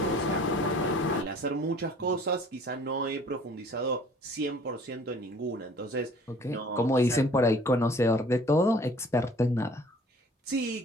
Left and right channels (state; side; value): normal; both; correlation 0.53